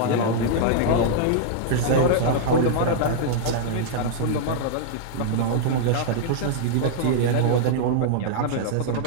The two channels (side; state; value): both; different; correlation -0.01